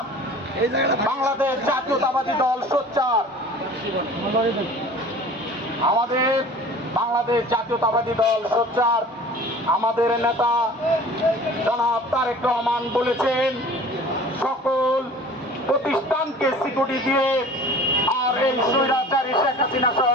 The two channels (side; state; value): both; normal; correlation 0.44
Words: বাংলাদেশ জাতীয়তাবাদী দল সোচ্চার, আমাদের বাংলাদেশ জাতীয়তাবাদী দল সোচ্চার। আমাদের নেতা জনাব তারেক রহমান বলেছেন, সকল প্রতিষ্ঠানকে সিকিউরিটি দিয়ে আর এই স্বৈরাচারী শেখ হাসিনা সহ